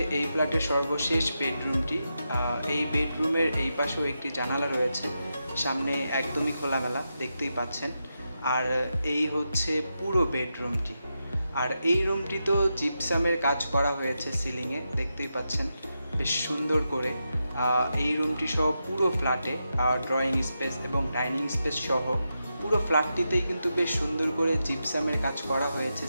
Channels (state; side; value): inverted; both; correlation -0.87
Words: এই ফ্ল্যাটের সর্বশেষ বেডরুমটি। এই বেডরুমের এই পাশেও একটি জানালা রয়েছে, সামনে একদমই খোলামেলা, দেখতেই পাচ্ছেন। আর এই হচ্ছে পুরো বেডরুমটি। আর এই রুমটিতেও জিপসামের কাজ করা হয়েছে সিলিংয়ে, দেখতেই পাচ্ছেন বেশ সুন্দর করে। এই রুমটি সহ পুরো ফ্ল্যাটে ড্রয়িং স্পেস এবং ডাইনিং স্পেস সহ পুরো ফ্ল্যাটটিতেই কিন্তু বেশ সুন্দর করে জিপসামের কাজ করা হয়েছে